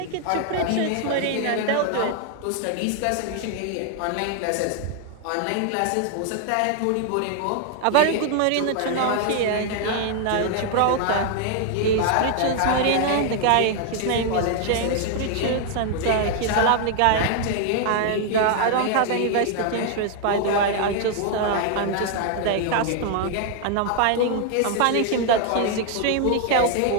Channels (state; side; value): different; both; correlation 0.00